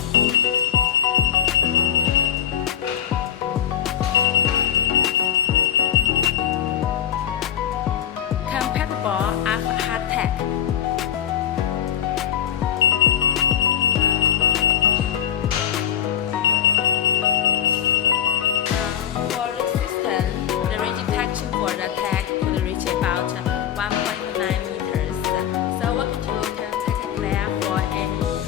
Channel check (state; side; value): quieter; right; 9.2 dB